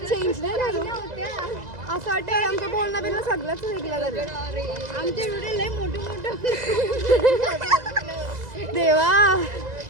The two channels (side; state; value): left; late; 2.0 ms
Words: चेंज नाही करू. असं वाटतं आमचं बोलणं बिलणं सगळंच वेगळं झालं. आमचे व्हिडिओ लय मोठे मोठे. देवा